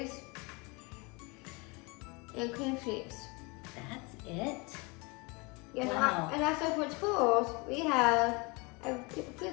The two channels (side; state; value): right; quieter; 28.4 dB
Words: and cream cheese. That's it? Yes, Wow. and also for tools, we have a